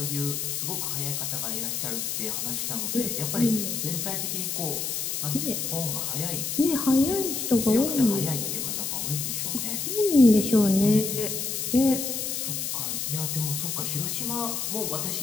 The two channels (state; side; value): noise; left; hiss, 2 dB below the sound